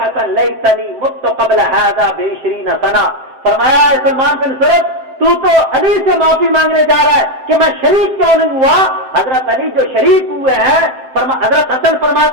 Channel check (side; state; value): left; late; 7.6 ms